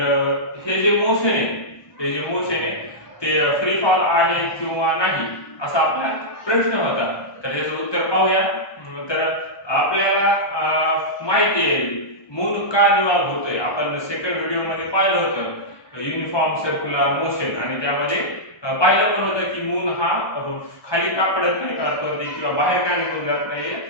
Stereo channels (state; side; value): late; right; 1.2 ms